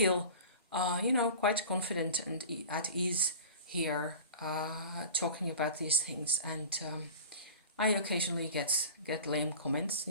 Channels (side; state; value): both; inverted; correlation -0.37